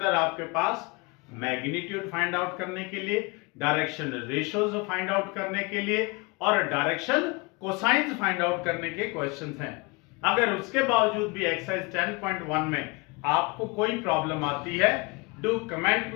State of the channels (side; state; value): right; quieter; 27.4 dB